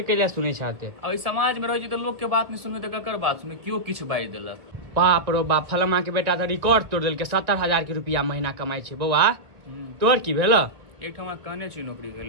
लिए सुनै छाते? अब समाज में रहे छै तो लोग के बात नहीं सुनबे तो ककर बात सुनबे, क्यों किछ बाजि देलक। बाप रो बाप, फलमा के बेटा तो रिकॉर्ड तोड़ देलकै, 70,000 के रुपया महीना कमाई छै। बौआ तोर की भेल? एक ठमा कहने छी नौकरी के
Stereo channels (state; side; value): late; left; 1.9 ms